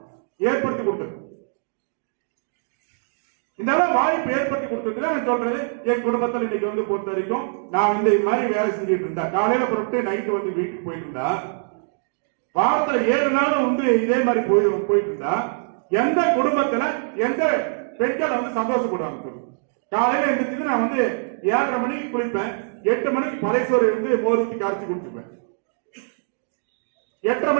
ஏற்படுத்தி கொடுத்தது. இந்த வாய்ப்பு ஏற்படுத்தி கொடுத்தது நான் சொல்றது. என் குடும்பத்தில் இன்னைக்கு வந்து பொறுத்த வரைக்கும் நான் வந்து இது மாதிரி வேலை செஞ்சுட்டு இருந்தேன். காலையில புறப்பட்டு நைட்டு வந்து வீட்டுக்கு போயிட்டு இருந்தா, வாரத்துல 7 நாளும் வந்து இதே மாதிரி போயிட்டு இருந்தா எந்த குடும்பத்துல எந்த பெண்கள் வந்து சந்தோஷப்படுவாங்க? காலையில எழுந்திரிச்சு நான் வந்து 7:30 மணிக்கு குளிப்பேன், 8 மணிக்கு பழையசோறு இருந்து மோர் ஊற்றி கரைச்சி குடிச்சுப்பேன், 8:30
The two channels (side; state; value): left; silent; digital silence